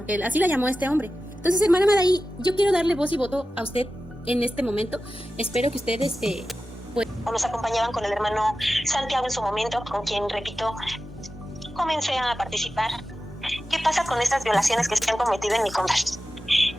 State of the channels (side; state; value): both; normal; correlation 0.94